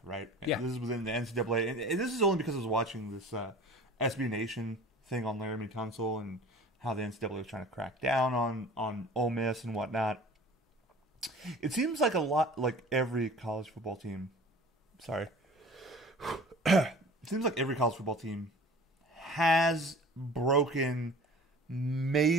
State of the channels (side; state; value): both; normal; correlation 0.43